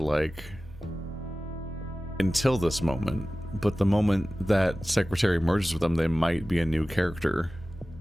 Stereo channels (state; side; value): normal; both; correlation 0.96